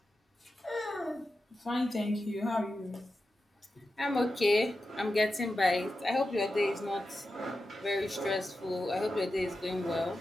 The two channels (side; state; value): both; normal; correlation 0.91